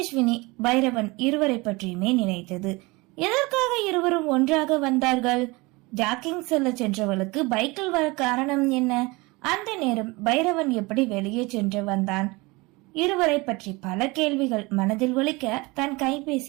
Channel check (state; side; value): quieter; left; 24.3 dB